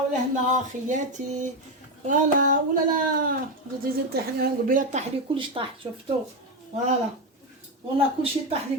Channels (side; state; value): both; normal; correlation 0.11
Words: ولهنا خياتي. فوالا ولا لا زيد طيح لي قبيله، طاح لي كلش طاح شفتو. فوالا والله كلشي طاح لي